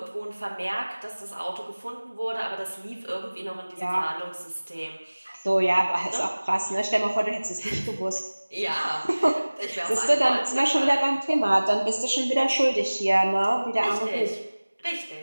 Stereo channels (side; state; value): both; inverted; correlation -1.00